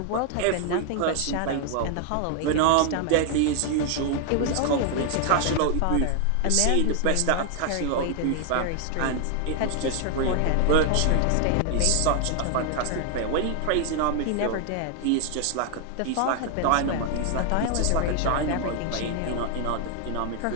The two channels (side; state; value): both; different; correlation 0.00